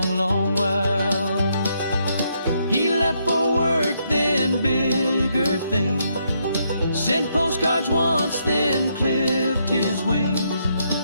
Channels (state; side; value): inverted; both; correlation -0.76